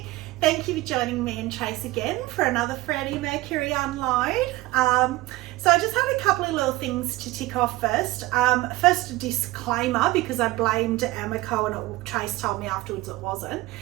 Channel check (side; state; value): left; quieter; 18.9 dB